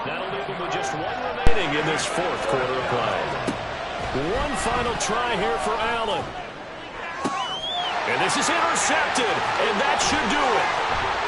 That'll leave them with just 1 remaining in this 4th quarter of play. One final try here for Allen. And this is intercepted, and that should do it.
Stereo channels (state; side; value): identical; both; correlation 1.00